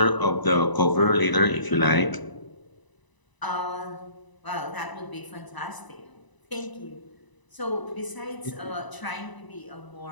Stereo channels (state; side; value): late; right; 1.0 ms